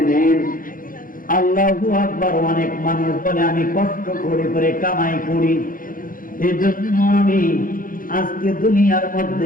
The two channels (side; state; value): right; late; 0.40 ms